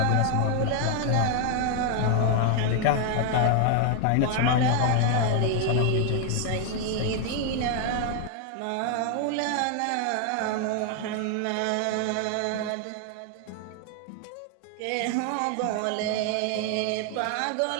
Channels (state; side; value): different; both; correlation 0.00